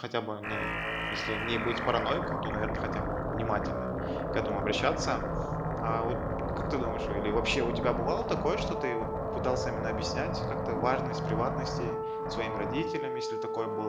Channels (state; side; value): identical; both; correlation 1.00